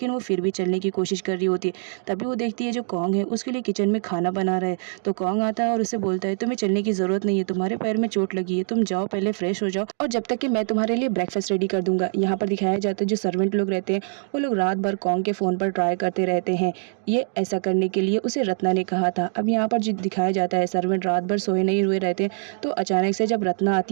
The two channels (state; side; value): silent; left; digital silence